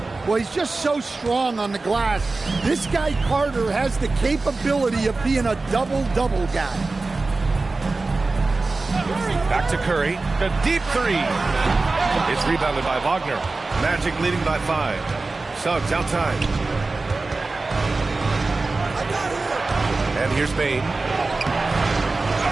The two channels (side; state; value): left; quieter; 3.6 dB